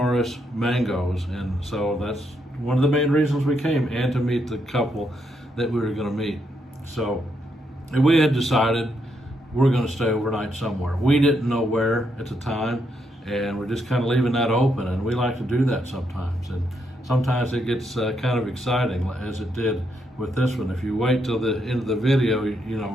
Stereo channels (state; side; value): normal; both; correlation 0.78